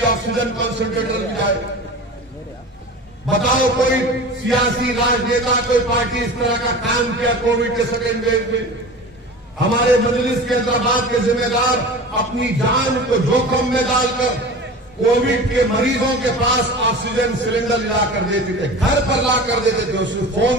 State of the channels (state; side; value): normal; both; correlation 0.35